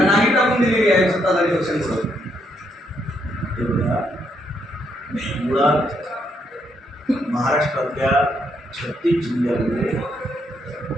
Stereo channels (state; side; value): normal; both; correlation 0.75